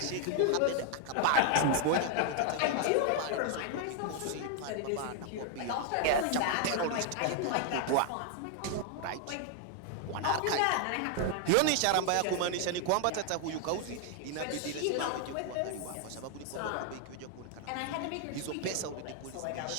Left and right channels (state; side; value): different; both; correlation 0.00